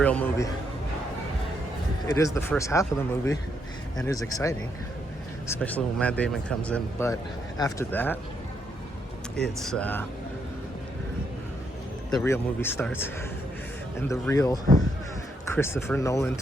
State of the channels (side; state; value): both; normal; correlation 0.76